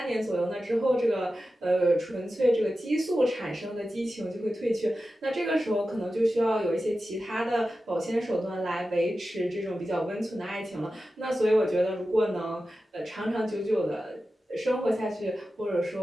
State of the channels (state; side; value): normal; both; correlation 0.93